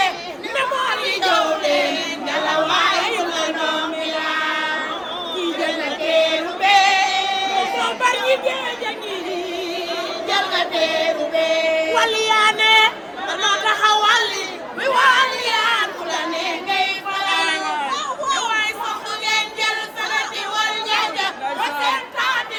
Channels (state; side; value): identical; both; correlation 1.00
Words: ne moo li jow leen ngala waaye la noomi la kii jël na teeru bee moo bari ñi géej a ngi jël nga teeru bee waliyaane danoo taxawali mi waliyaan ku la ne ngay faral waaye soxna ngeen jël sanati wal njaaja ba seen taati